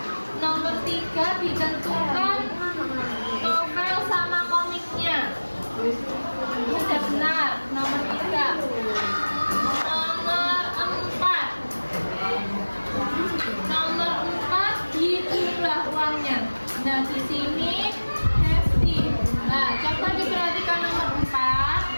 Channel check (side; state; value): both; inverted; correlation -1.00